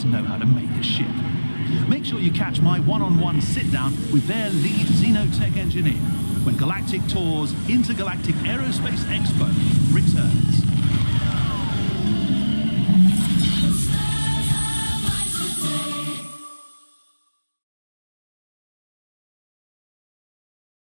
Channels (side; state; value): both; inverted; correlation -1.00